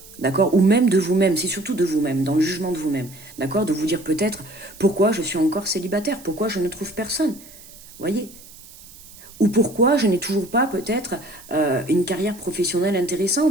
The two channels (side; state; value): right; noise; hiss, 20 dB below the sound